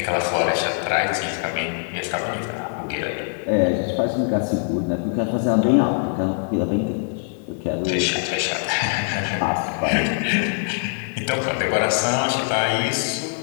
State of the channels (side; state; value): right; silent; 61 dB below the other